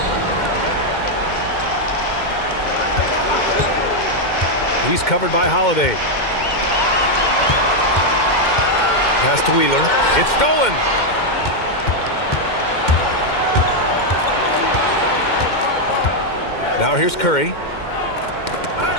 He's covered by Holiday. Pass to Wheeler. It's stolen. Now here's Curry.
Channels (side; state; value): right; late; 2.0 ms